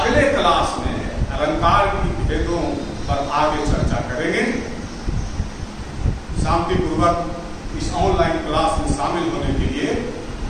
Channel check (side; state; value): both; identical; correlation 1.00